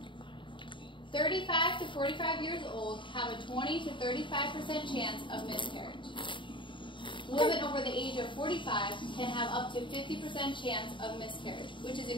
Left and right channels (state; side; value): late; right; 0.24 ms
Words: 35 to 45 years old have a 20 to 35% chance of miscarriage. Women over the age of 45 can have up to 50% chance of miscarriage, which is